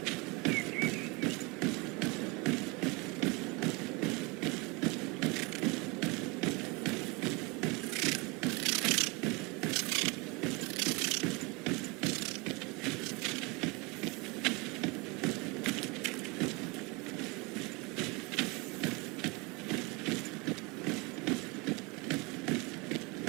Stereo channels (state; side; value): quieter; left; 27.4 dB